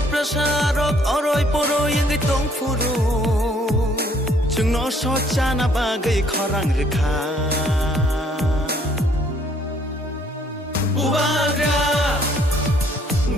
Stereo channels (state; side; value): normal; both; correlation 0.64